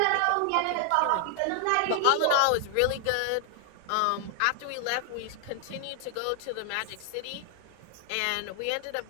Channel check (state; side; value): different; both; correlation 0.00